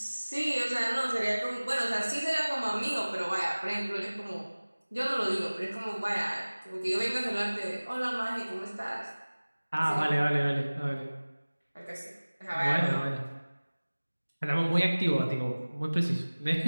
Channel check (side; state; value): both; inverted; correlation -1.00